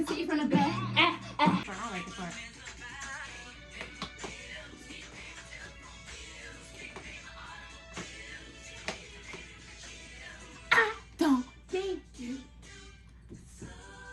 see it from the back. I like the part. I don't think you.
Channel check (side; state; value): both; identical; correlation 1.00